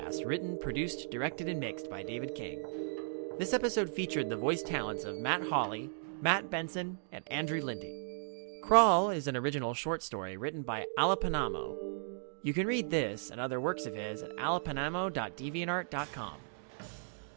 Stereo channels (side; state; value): left; silent; digital silence